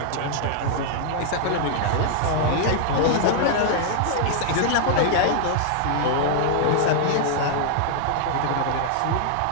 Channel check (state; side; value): different; both; correlation 0.00